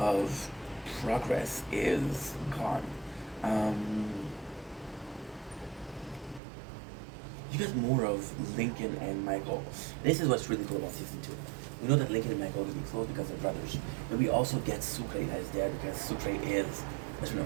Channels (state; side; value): drops out; left; at 6.4 s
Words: progress is gone. You get more of Lincoln and Michael. This is what's really cool about season 2. We know that Lincoln and Michael are going to be close because they're brothers, but we also get Sucre that is there because Sucre is best friend